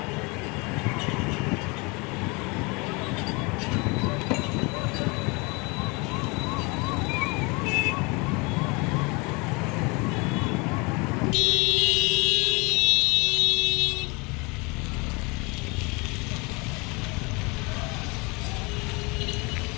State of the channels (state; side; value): quieter; right; 28.2 dB